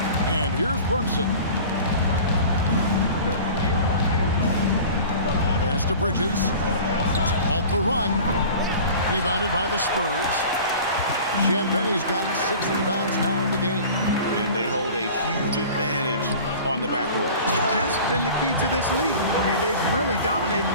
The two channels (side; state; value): both; inverted; correlation -0.41